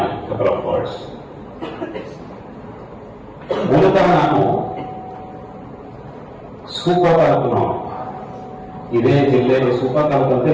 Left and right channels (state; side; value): identical; both; correlation 1.00